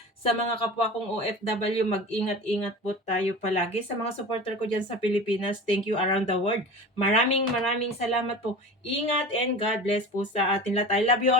kapwa kong OFW, mag-ingat-ingat po tayo palagi. Sa mga supporter ko diyan sa Pilipinas, thank you around the world. Maraming maraming salamat po. Ingat and God bless po sa atin lahat. I love you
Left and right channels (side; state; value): both; normal; correlation 0.34